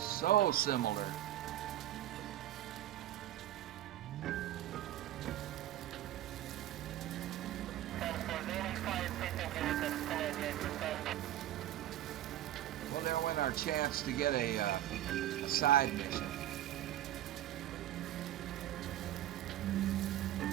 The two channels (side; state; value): left; quieter; 13.2 dB